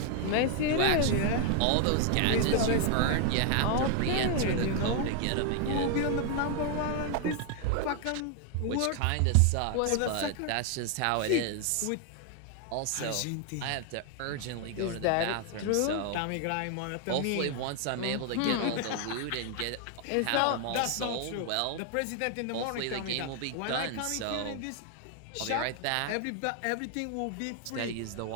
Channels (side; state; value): both; different; correlation 0.00